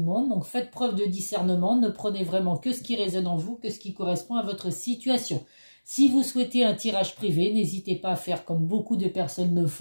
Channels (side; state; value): both; inverted; correlation -1.00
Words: monde. Donc faites preuve de discernement, ne prenez vraiment que ce qui résonne en vous, que ce qui correspond à votre situation. Si vous souhaitez un tirage privé, n'hésitez pas à faire comme beaucoup de personnes le